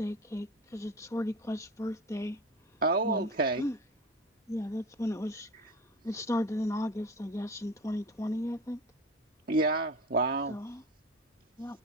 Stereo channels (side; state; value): both; normal; correlation 0.30